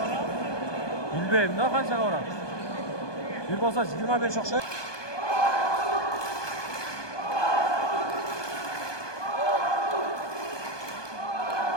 Bilmeyim ne kaçak oran. Bir olsa 25 okşay.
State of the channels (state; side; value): late; right; 1.2 ms